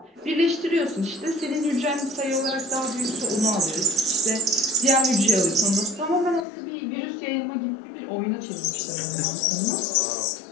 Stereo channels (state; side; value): drops out; right; at 6.5 s